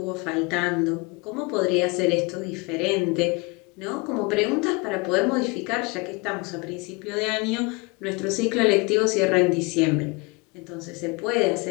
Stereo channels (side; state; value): right; quieter; 27.5 dB